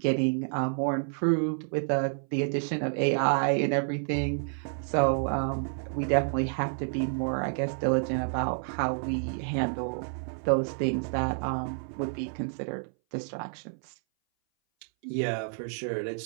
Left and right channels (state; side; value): silent; left; 58 dB below the other